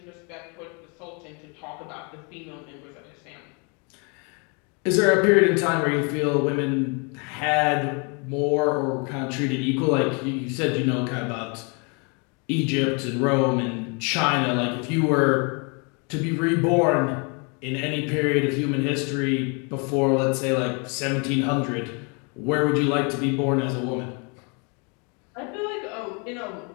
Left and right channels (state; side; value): quieter; right; 34.0 dB